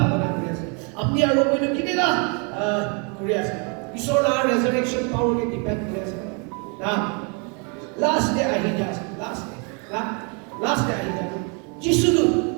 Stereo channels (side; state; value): left; quieter; 35.3 dB